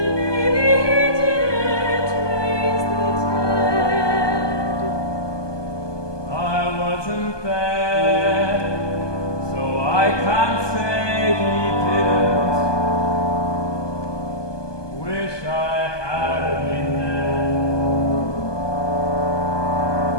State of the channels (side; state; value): right; late; 1.2 ms